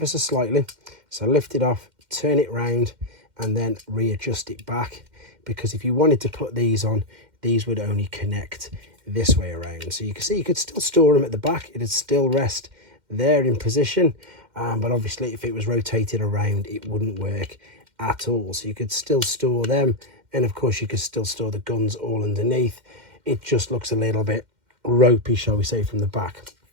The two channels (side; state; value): left; late; 2.1 ms